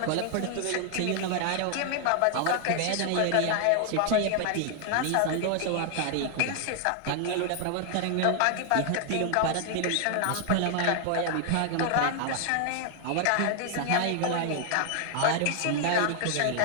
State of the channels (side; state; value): both; different; correlation 0.00